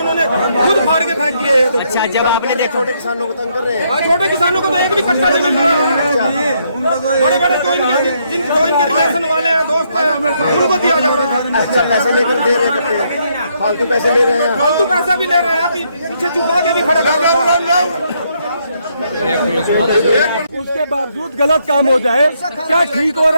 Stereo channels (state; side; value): inverted; both; correlation -0.74